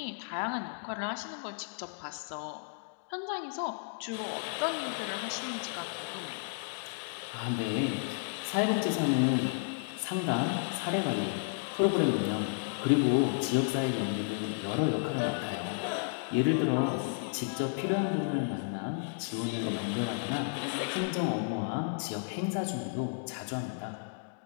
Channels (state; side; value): silent; right; digital silence